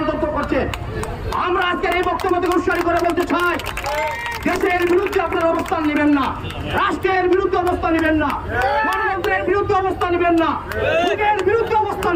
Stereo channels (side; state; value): both; identical; correlation 1.00